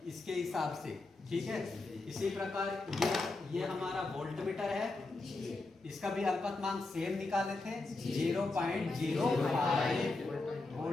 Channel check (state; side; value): quieter; right; 3.3 dB